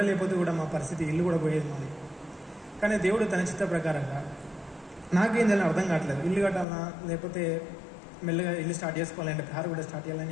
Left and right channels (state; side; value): drops out; right; at 6.7 s